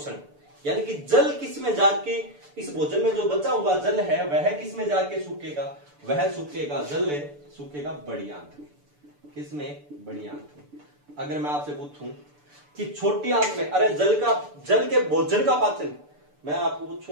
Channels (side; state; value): left; late; 6.9 ms